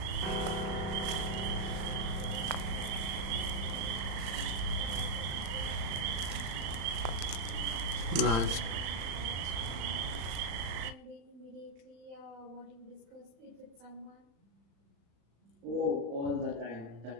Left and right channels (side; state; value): left; late; 35 ms